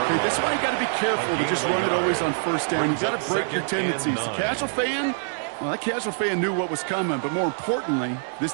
Okay, that's why you got to be careful to just run it always on first down. You got to break your tendencies. The casual fan, well, that casual fan knew what was coming, but more importantly, this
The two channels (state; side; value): silent; left; digital silence